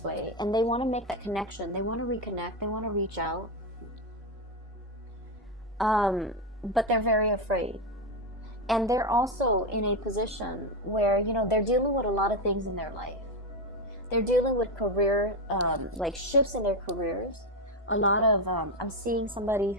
way, and they want to make that connection. They want to reconnect. They want to reach out. But they're very afraid. And they're also in a position where, you know, they're dealing with a lot of things in their life. They're dealing with career, like shifts in their careers. A lot of, I'm seeing somebody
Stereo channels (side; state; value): both; normal; correlation 0.09